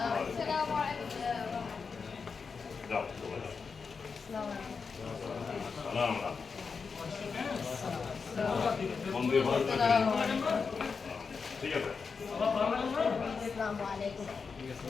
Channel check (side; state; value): right; quieter; 5.3 dB